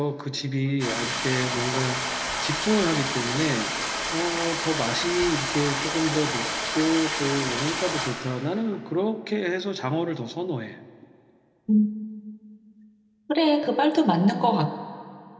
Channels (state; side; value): identical; both; correlation 1.00